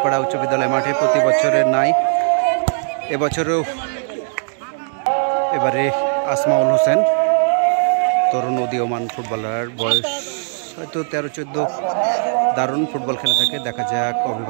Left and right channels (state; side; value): silent; left; digital silence